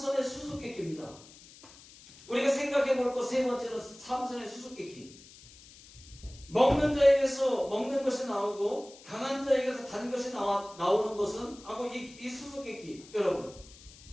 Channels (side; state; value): left; noise; hiss, 21 dB below the sound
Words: 수수께끼입니다. 우리가 생각해 볼 것 세 번째는 삼선의 수수께끼. 먹는 자에게서 먹는 것이 나오고 강한 자에게서 단 것이 나오는 것은 하고 이 수수께끼. 여러분